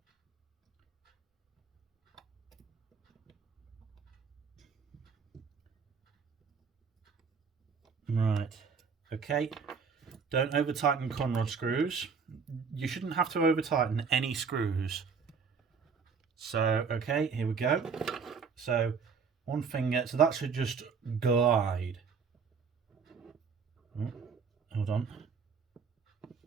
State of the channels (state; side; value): quieter; left; 5.7 dB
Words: Right, okay. Don't over tighten conrod screws. You shouldn't have to over tighten any screws. So, okay, here we go. So, one finger, so that should just glide. Oh, hold on.